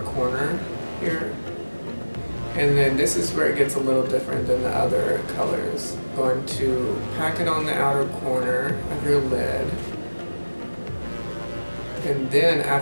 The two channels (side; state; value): both; inverted; correlation -1.00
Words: here. And then this is where it gets a little different than the other colors. Going to pack it on the outer corner of your lid. And then